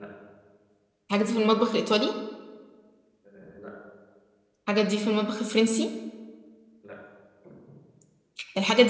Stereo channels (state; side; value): identical; both; correlation 1.00